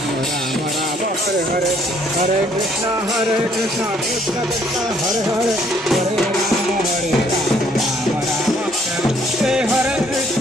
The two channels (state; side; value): normal; both; correlation 0.64